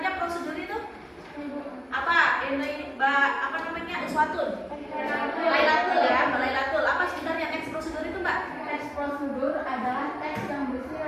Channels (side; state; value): both; identical; correlation 1.00